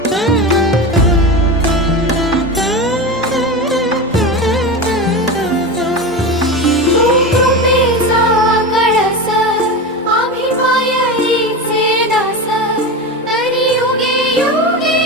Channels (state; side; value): normal; both; correlation 0.23